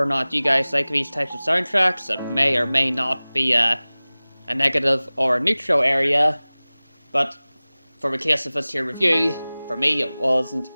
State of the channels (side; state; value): both; inverted; correlation -0.99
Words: or not you guys like these types of soundtracks, it may or may not be a negative or a neutral area. But for the case of this here review, for me it wasn't